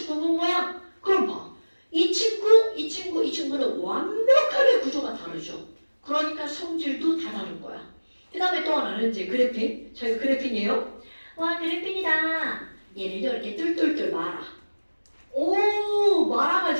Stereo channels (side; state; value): both; inverted; correlation -1.00